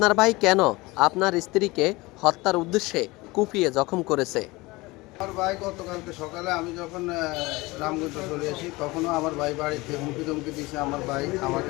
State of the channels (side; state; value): right; quieter; 22.1 dB